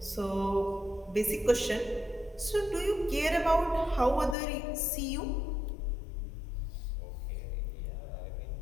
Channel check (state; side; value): drops out; right; at 4.4 s